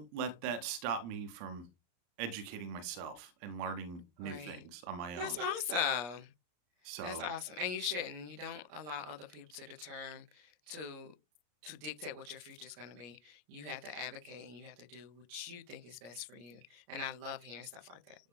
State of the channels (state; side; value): late; left; 33 ms